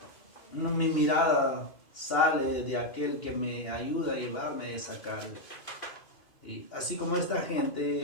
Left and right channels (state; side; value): late; right; 2.5 ms